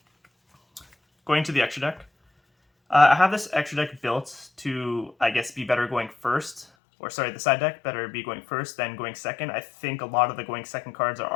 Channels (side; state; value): right; drops out; at 6.7 s